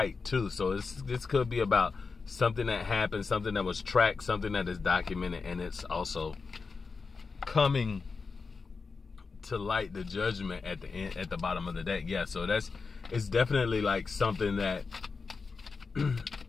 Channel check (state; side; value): quieter; right; 4.7 dB